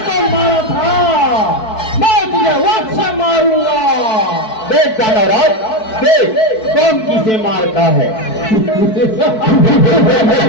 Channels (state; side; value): late; right; 4.6 ms